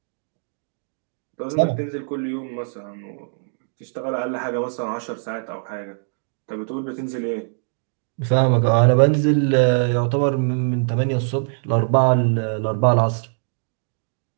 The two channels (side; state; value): left; silent; digital silence